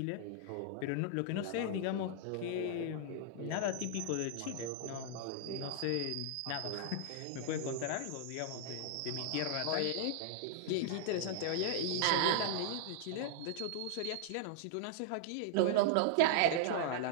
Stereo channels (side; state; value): both; different; correlation 0.00